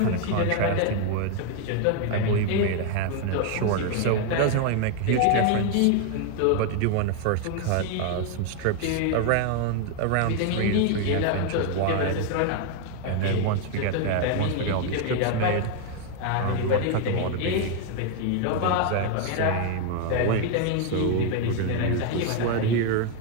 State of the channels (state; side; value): different; both; correlation 0.01